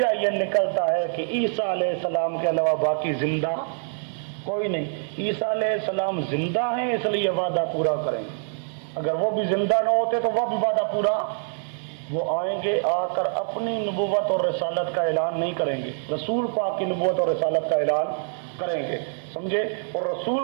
یہ نکلتا ہے کہ عیسیٰ علیہ السلام کے علاوہ باقی زندہ کوئی نہیں۔ عیسیٰ علیہ السلام زندہ ہیں، اس لیے وعدہ پورا کریں گے۔ اگر وہ بھی زندہ نہ ہوتے تو وہ بھی وعدہ پورا، وہ آئیں گے، آ کر اپنی نبوت اور رسالت کا اعلان نہیں کریں گے، رسول پاک کی نبوت اور رسالت کا اعلان کریں گے، سمجھے، اور رسول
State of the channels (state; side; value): silent; left; digital silence